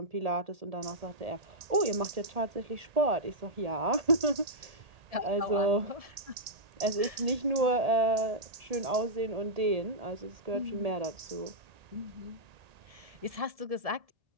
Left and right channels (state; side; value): late; left; 1.7 ms